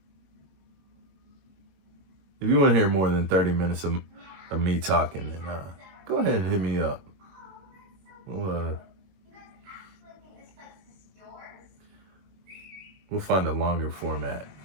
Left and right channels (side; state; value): left; late; 21 ms